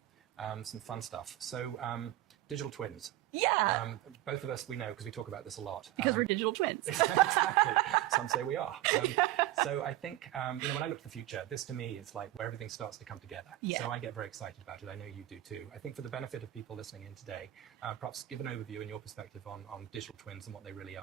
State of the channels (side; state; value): left; quieter; 15.1 dB